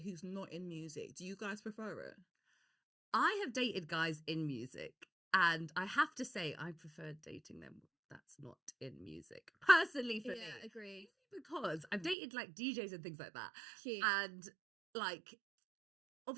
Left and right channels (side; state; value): left; drops out; at 12.2 s